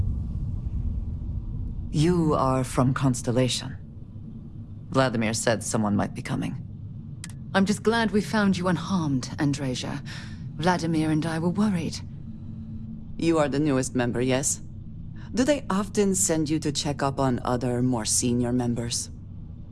You are from Constellation. Vladimir said someone might be coming. I'm just glad we found you unharmed, Andreja. Vladimir and I were worried. You are the newest member, yes? Do they often send you to check up on other, more senior members?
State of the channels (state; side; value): identical; both; correlation 1.00